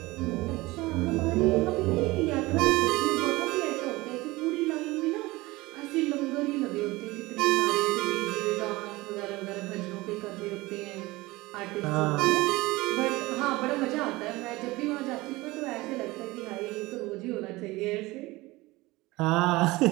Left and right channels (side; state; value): left; quieter; 20.8 dB